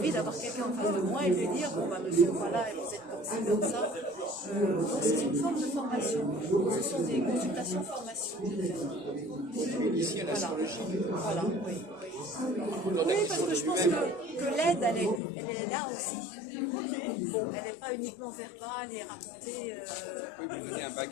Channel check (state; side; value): drops out; right; at 15.2 s